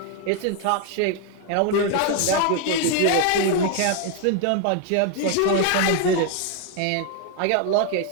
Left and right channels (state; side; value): different; both; correlation 0.01